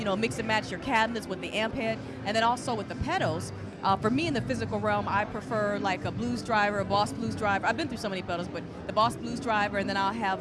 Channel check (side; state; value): both; identical; correlation 1.00